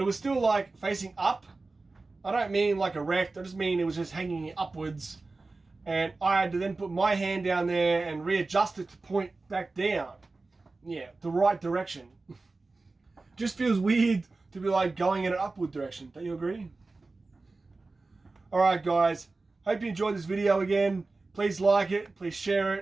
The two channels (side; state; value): left; quieter; 3.5 dB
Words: was still like facing up. I don't mean like erect, I just mean it was just hanging upwards. And I had to then put my hand down there and readjust it to point back down. Yeah, the right direction. Just feels weird to be like going in an upward direction. Don't you agree? Alright guys, hope you enjoyed this video again. Please like it, please share